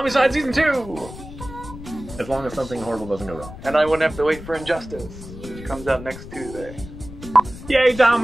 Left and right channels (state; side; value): noise; left; rumble, 14 dB below the sound